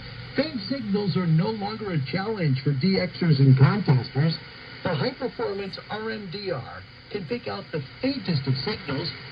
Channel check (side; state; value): both; identical; correlation 1.00